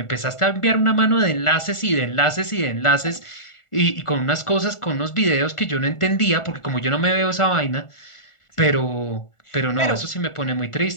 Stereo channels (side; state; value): right; late; 1.4 ms